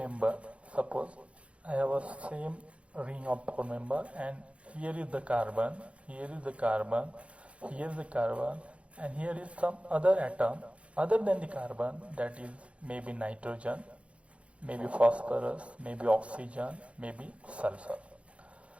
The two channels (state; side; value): late; left; 0.062 ms